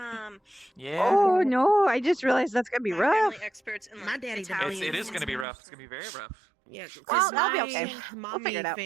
Yeah, Oh no, I just realized that's gonna be My rough. family experts in, My like, daddy Italian it is and gonna be rough. stuff. It's gonna be very rough. Yeah, Well, because I'll be okay. my We'll figure it mommy out.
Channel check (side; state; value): left; drops out; at 5.5 s